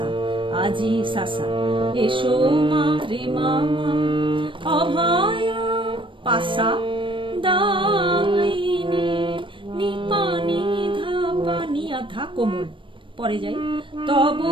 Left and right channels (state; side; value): late; left; 0.25 ms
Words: আজি সাসা, এসো মা রে মা মা অভয় পাসা দায়িনী, নিপানি ধাপা নিয়া ধা কোমল, পরে যাই, তব